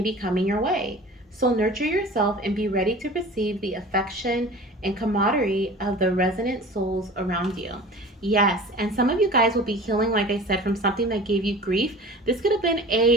be coming your way. So nurture yourself and be ready to receive the affection and camaraderie of the resonant souls around you. Yes, and some of you guys will be healing, like I said, from something that gave you grief. This could have been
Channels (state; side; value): normal; both; correlation 0.40